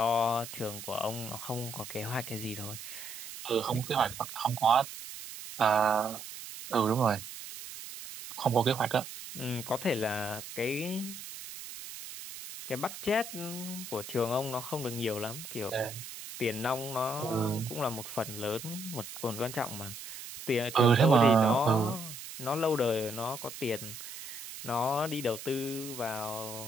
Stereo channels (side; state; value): right; noise; hiss, 11 dB below the sound